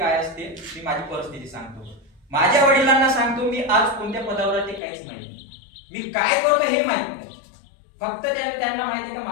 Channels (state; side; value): drops out; right; at 4.8 s